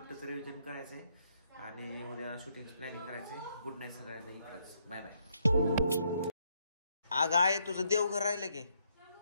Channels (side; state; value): both; inverted; correlation -0.74